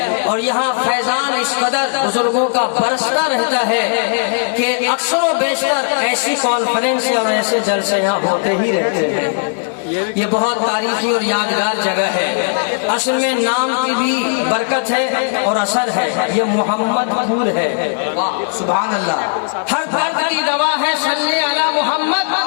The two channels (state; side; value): silent; right; 64 dB below the other